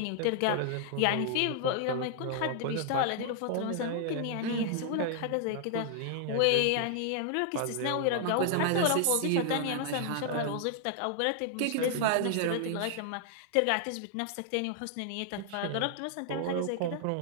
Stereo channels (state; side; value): different; both; correlation 0.00